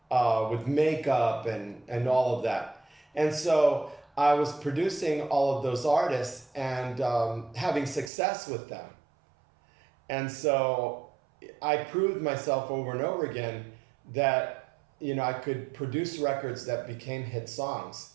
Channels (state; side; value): drops out; left; at 8.1 s